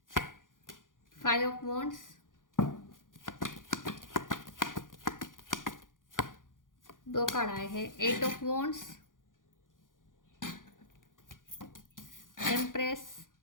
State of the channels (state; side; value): late; right; 0.89 ms